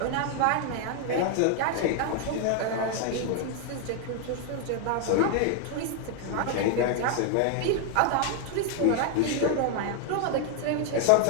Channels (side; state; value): both; different; correlation 0.00